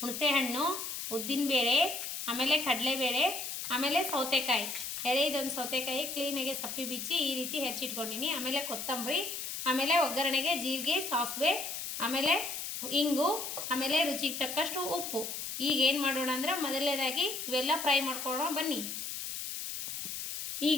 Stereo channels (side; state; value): left; noise; hiss, 5 dB below the sound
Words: ಹುಣಸೆಹಣ್ಣು, ಉದ್ದಿನಬೇಳೆ, ಆಮೇಲೆ ಕಡಲೆಬೇಳೆ, ಆಮೇಲೆ ಸೌತೆಕಾಯಿ ಎಳೆದೊಂದು ಸೌತೆಕಾಯಿ ಕ್ಲೀನಾಗಿ ಸಪ್ಪಿ ಬಿಚ್ಚಿ ಈ ರೀತಿ ಹೆಚ್ಚಿಟ್ಕೊಂಡಿನಿ. ಆಮೇಲೆ ಕೊತ್ತಂಬರಿ, ಆಮೇಲೆ ಒಗ್ಗರಣೆಗೆ ಜೀರಿಗೆ, ಸಾಸಿವೆ, ಆಮೇಲೆ ಇಂಗು, ಆಮೇಲೆ ರುಚಿಗೆ ತಕ್ಕಷ್ಟು ಉಪ್ಪು. ಈಗ ಏನು ಮಾಡೋಣ ಅಂದ್ರೆ ಮೊದಲನೇದಾಗಿ ಇವೆಲ್ಲ ಫ್ರೈ ಮಾಡ್ಕೊಳ್ಳೋಣ ಬನ್ನಿ.